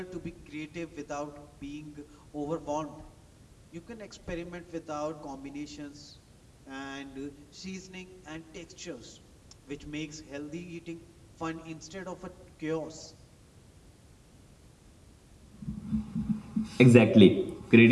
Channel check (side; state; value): both; identical; correlation 1.00